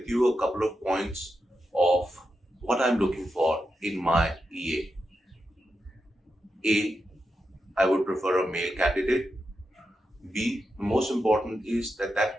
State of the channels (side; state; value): both; normal; correlation 0.87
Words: you a couple of points of what I'm looking for in my EA. I would prefer a male candidate. B, most important is that that